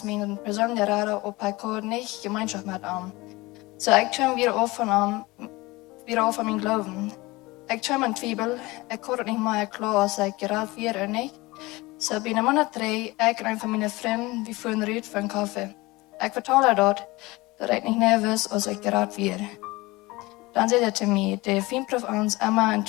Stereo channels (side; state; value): right; quieter; 21.8 dB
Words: mijn persoonlijke raden op hij kan niet gemeenschap met hem. Zo ik kom weer af van mijn geloven. Ik kom in twijfel. Ik kan het niet meer klaar als ik geraad weer en niet. Zo binnen maand 3, ik en een van mijn vrienden, we voeren eruit voor een koffie. Ik vertel haar dat ik niet nerveus als ik geraad weer. Dan zei hij te mij, de vriend proeft ons immer in